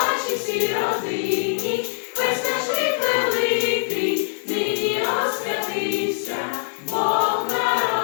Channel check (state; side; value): silent; right; 64 dB below the other